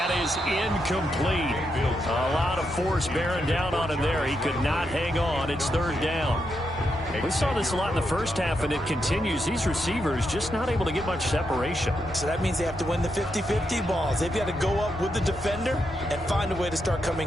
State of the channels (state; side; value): normal; both; correlation 0.83